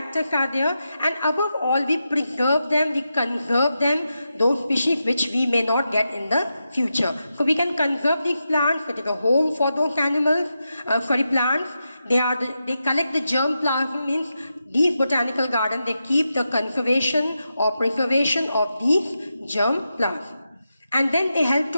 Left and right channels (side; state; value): both; inverted; correlation -0.88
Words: are there, and above all, we preserve them, we conserve them, those species which we may not get in the future. So we can conserve these plants, it is a home for those plants. They collect the germ plasm, means these botanical gardens, they keep the conservation or preservation of these germ plasm. And then they help